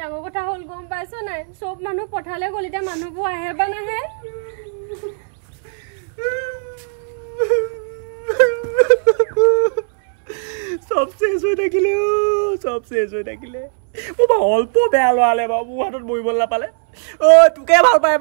কথা হল গম পাইছো নাই সব মানুহ পঠালে গলিটা মানুহবো আহে বা নাহে সব শেষ হৈ থাকিলে ও অল্প বেয়া লৱালে বাবু হাতত বইবল না পালে ও তোকে ভাল পায়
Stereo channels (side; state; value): left; silent; 67 dB below the other